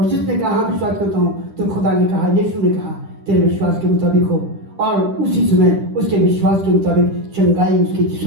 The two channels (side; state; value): left; late; 10 ms